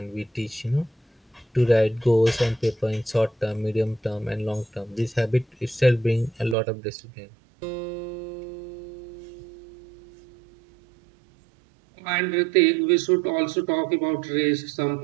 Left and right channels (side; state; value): left; drops out; at 6.6 s